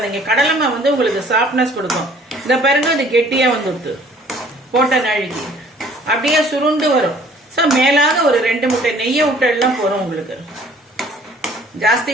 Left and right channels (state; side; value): normal; both; correlation 0.55